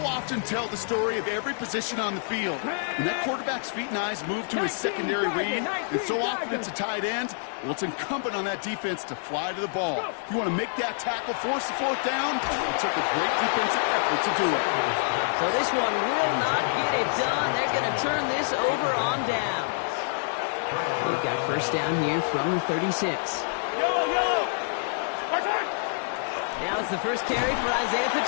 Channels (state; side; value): silent; right; digital silence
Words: often tell the story of every position on the field. When that quarterback's feet and eyes move to his secondary read, and so often it's a tight end, well, it's incumbent on that defense to fly to the ball. You want to make that tackle, force the 4th down? It took a great defensive effort to do it. So this one will not get it done. They're going to turn this over on down. They've got 1st down here from the 36. Now it's the first carry for Isaiah